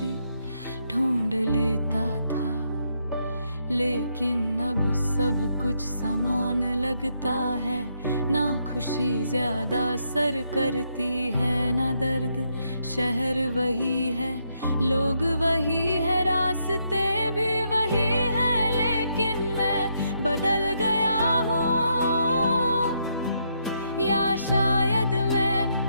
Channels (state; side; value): inverted; both; correlation -0.77